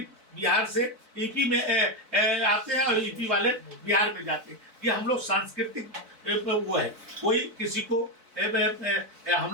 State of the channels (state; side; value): late; left; 4.3 ms